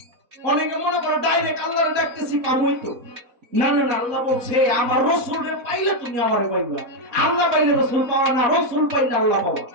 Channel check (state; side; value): late; left; 4.1 ms